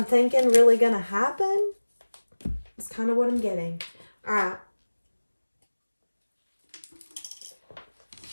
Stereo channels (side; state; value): both; inverted; correlation -1.00